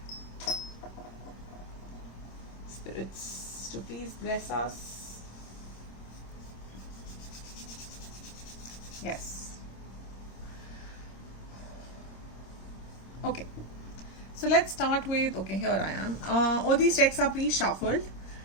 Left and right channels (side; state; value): right; late; 26 ms